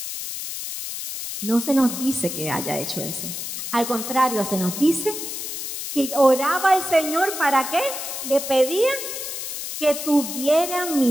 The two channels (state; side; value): noise; left; hiss, 6 dB below the sound